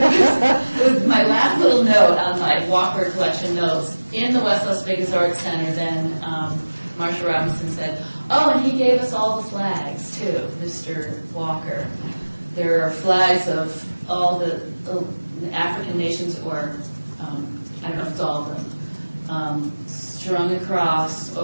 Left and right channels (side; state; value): both; inverted; correlation -1.00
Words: was my last little note on my Walker collection notes. In the West Las Vegas Arts Center, then Marsha Robinson said, oh, and he gave us all the flags, too, Mr. Walker. There are flags of all the African nations, or I don't know if it's all of them, strung across